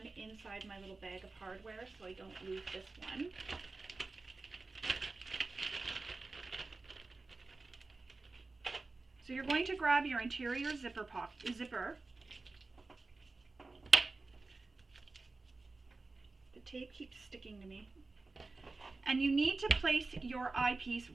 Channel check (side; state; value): left; quieter; 3.6 dB